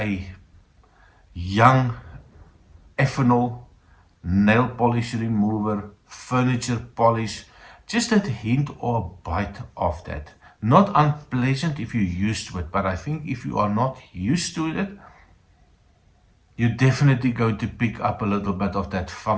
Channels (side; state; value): both; identical; correlation 1.00